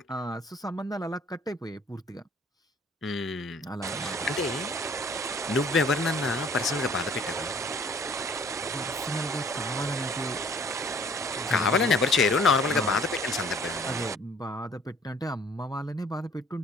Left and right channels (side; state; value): both; normal; correlation 0.55